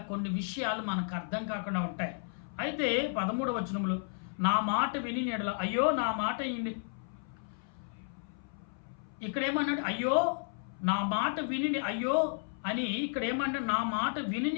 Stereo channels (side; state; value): right; silent; 56 dB below the other